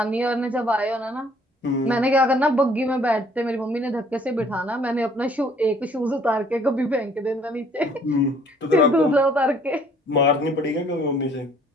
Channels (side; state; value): both; normal; correlation 0.59